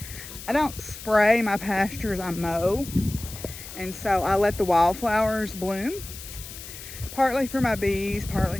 I don't spray my pastures, I mow. And so I let the wildflowers bloom, partly for my bees,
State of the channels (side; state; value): left; noise; hiss, 13 dB below the sound